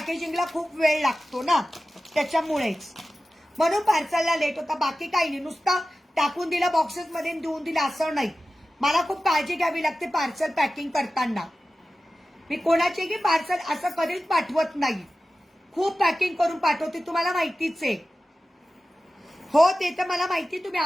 खूप वेळ लागतो ना त्याच्यामुळेच. म्हणून पार्सलला लेट होता. बाकी काही नाही. नुसतं टाकून दिलं बॉक्सेसमध्ये देऊन दिलं असं नाही. मला खूप काळजी घ्यावी लागते पार्सल पॅकिंग करताना. मी कोणाचेही पार्सल असं कधीच पाठवत नाही. खूप पॅकिंग करून पाठवते, तुम्हाला माहितीच आहे. हो ते तर मला माहिती. तुम्ही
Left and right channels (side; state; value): both; normal; correlation 0.95